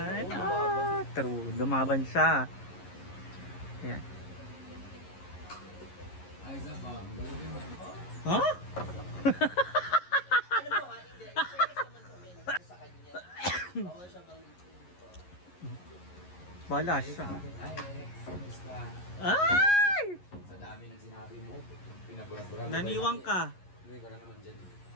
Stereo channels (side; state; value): right; late; 11 ms